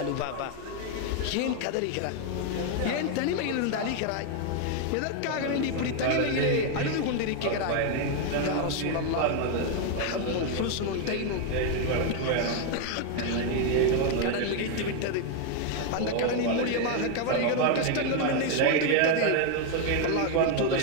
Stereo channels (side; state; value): both; different; correlation 0.01